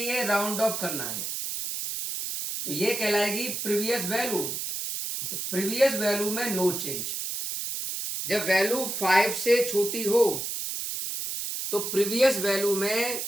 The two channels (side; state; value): right; noise; hiss, 4 dB below the sound